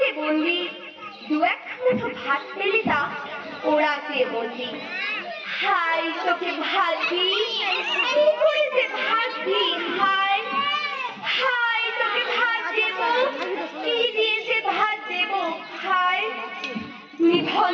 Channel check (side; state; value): both; identical; correlation 1.00